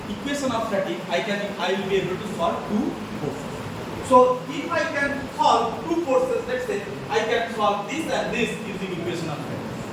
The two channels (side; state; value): both; identical; correlation 1.00